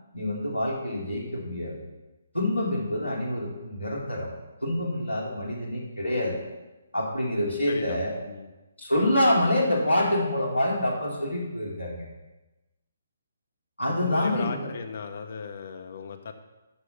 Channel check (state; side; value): inverted; both; correlation -0.80